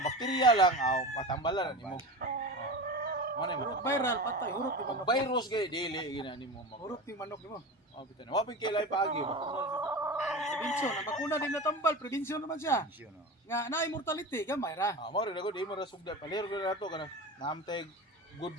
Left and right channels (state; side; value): normal; both; correlation 0.28